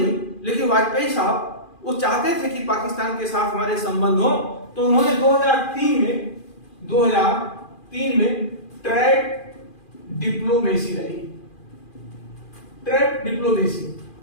लेकिन वाजपेयी साहब वो चाहते थे कि पाकिस्तान के साथ हमारे संबंध हो, तो उन्होंने 2003 में ट्रैक डिप्लोमेसी लाई। Track diplomacy,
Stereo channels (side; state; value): right; late; 2.4 ms